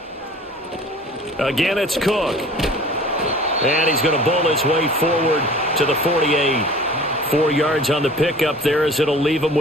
Again, it's Cook. And he's going to bowl his way forward to the 48. 4 yards on the pickup there as it'll leave him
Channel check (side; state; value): both; normal; correlation 0.44